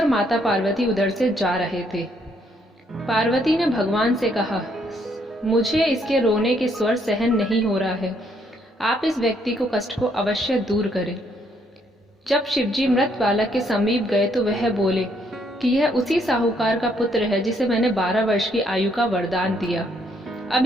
माता पार्वती उधर से जा रहे थे। पार्वती ने भगवान से कहा, मुझे इसके रोने के स्वर सहन नहीं हो रहा है। आप इस व्यक्ति को कष्ट को अवश्य दूर करें। जब शिवजी मृत बालक के समीप गए तो वह बोले कि यह उसी साहूकार का पुत्र है जिसे मैंने 12 वर्ष की आयु का वरदान दिया। अब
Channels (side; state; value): both; normal; correlation 0.71